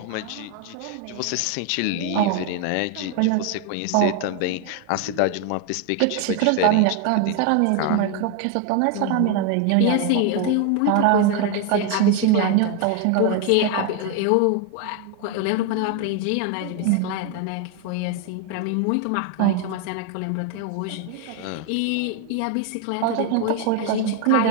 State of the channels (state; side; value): different; both; correlation 0.01